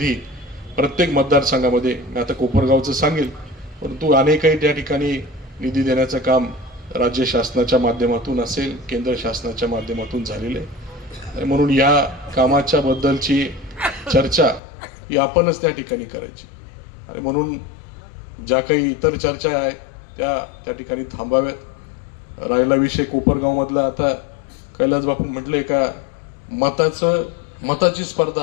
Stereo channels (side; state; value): right; drops out; at 14.6 s